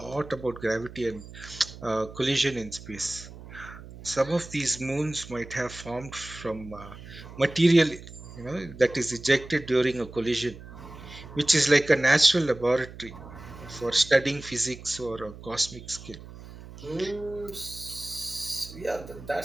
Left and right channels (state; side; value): noise; right; hum, 15 dB below the sound